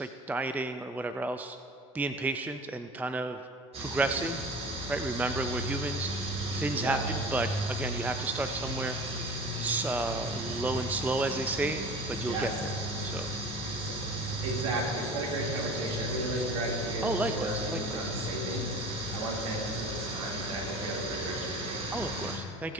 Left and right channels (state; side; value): normal; both; correlation 0.39